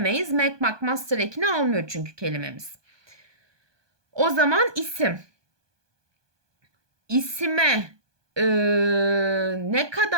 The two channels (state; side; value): late; left; 1.2 ms